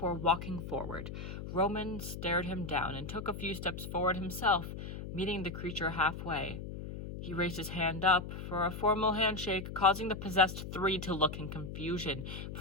walking forward. Roman stared him down and took a few steps forward himself, meeting the creature halfway. He raised his hand up for a formal handshake, causing the possessed three to look in confusion,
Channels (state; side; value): noise; left; hum, 8 dB below the sound